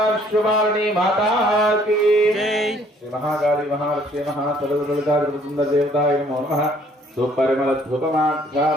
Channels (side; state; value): both; normal; correlation 0.61